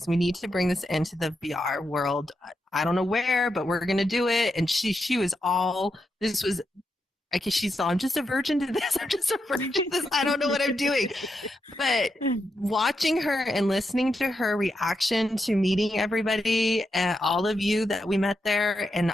We need to bring this into the VR world. I don't know where, but we're going to do it. And she was all, this was, I guess she's all, I'm just a virgin to this. I'm just a virgin to this. I don't know what I'm doing. But watching her and listening to her reaction to meeting everybody, all of you that we met there and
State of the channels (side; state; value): both; normal; correlation 0.85